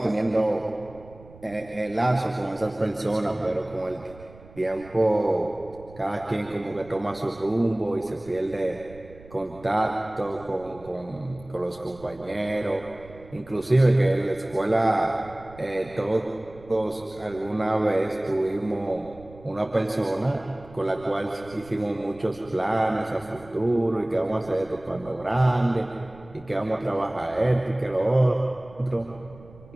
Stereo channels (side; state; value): right; noise; rumble, 21 dB below the sound